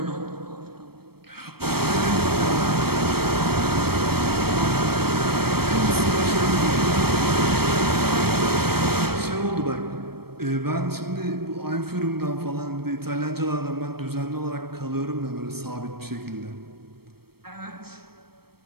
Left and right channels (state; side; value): late; left; 0.95 ms